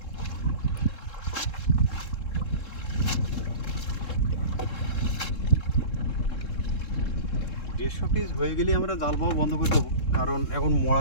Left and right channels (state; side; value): late; right; 3.7 ms